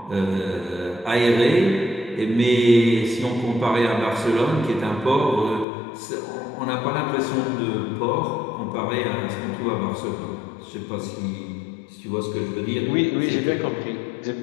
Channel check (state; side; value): drops out; right; at 5.7 s